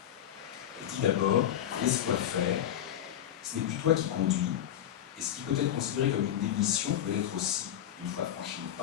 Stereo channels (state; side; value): quieter; right; 10.7 dB